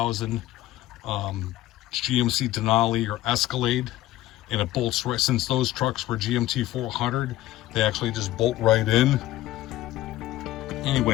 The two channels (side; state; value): right; quieter; 15.4 dB